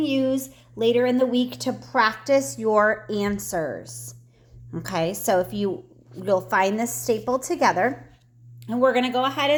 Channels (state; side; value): identical; both; correlation 1.00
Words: later in the week to practice your answers. Okay, so you'll find this stapled together. And we're going to go ahead